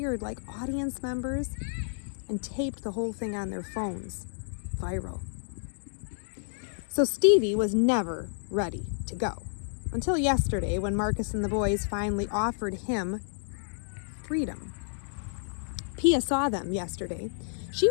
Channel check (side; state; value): right; silent; digital silence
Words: like audience members and taped the whole thing on their phones. Viral. So Stevie was never ready to go. Until yesterday, when Marcus and the boys finally offered him freedom. Pia saw them yesterday. She